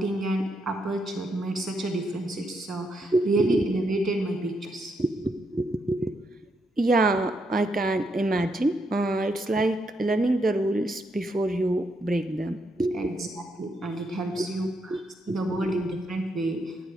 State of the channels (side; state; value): both; normal; correlation 0.78